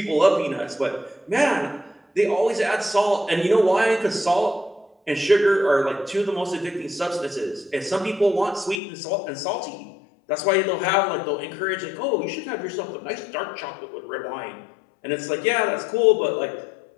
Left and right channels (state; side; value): drops out; right; at 8.8 s